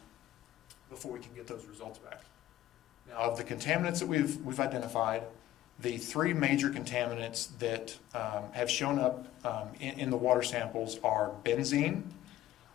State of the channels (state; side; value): quieter; right; 14.0 dB